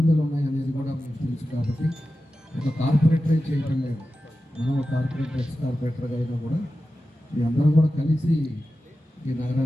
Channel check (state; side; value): normal; both; correlation 0.93